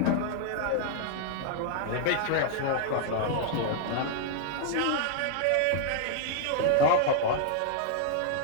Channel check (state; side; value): different; both; correlation 0.00